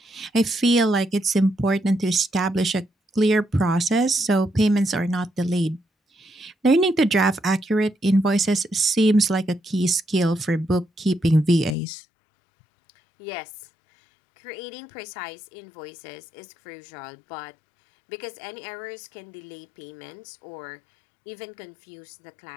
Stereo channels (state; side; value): drops out; right; at 11.8 s